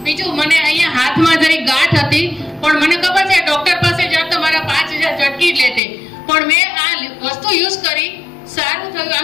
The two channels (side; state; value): right; drops out; at 5.8 s